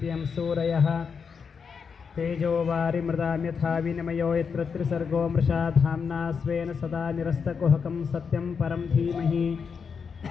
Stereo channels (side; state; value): right; quieter; 6.0 dB